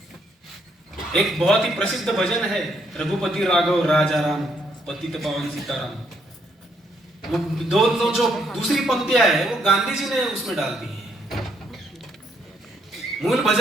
एक बहुत ही प्रसिद्ध भजन है, रघुपति राघव राजा राम, पतित पावन सीताराम। वो 2 जो दूसरी पंक्तियां है वो गांधी जी ने उसमें डाल दी है। मूल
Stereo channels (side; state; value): both; normal; correlation 0.73